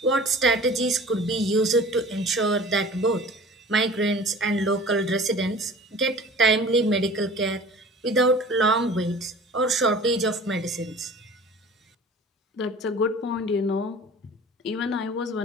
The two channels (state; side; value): normal; both; correlation 0.43